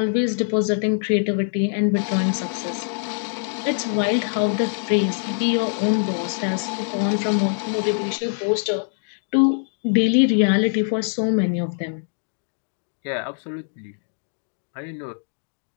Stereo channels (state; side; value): silent; right; digital silence